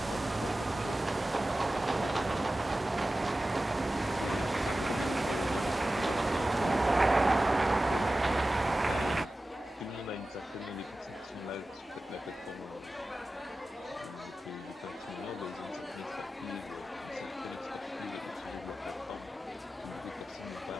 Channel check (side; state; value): both; normal; correlation 0.95